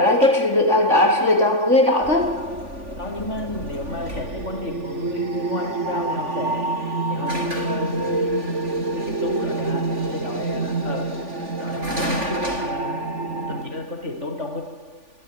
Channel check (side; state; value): left; late; 3.5 ms